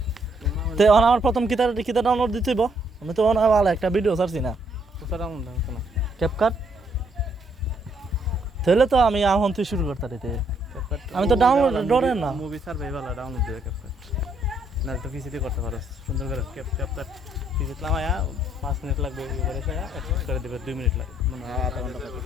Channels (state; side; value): normal; both; correlation 0.71